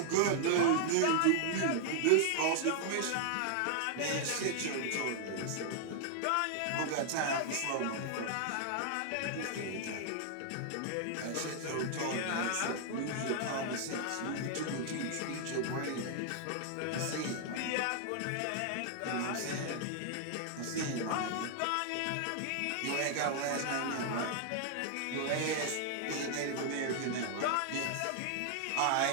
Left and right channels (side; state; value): both; different; correlation 0.00